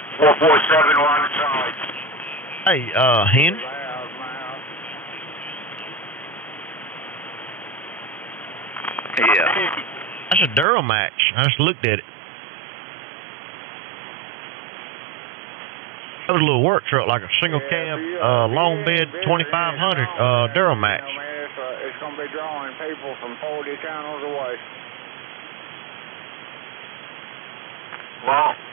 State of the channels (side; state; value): left; drops out; at 10.7 s